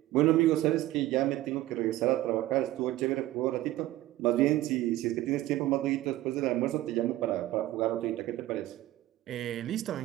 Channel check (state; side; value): quieter; left; 15.8 dB